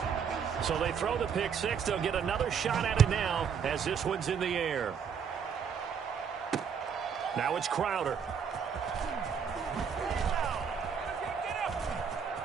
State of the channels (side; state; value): left; quieter; 6.9 dB